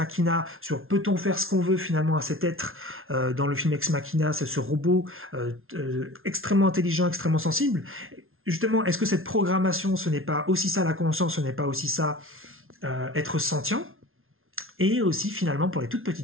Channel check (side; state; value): left; late; 0.61 ms